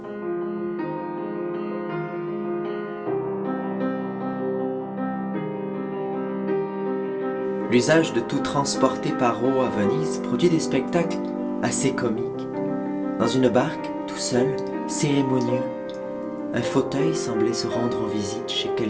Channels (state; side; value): identical; both; correlation 1.00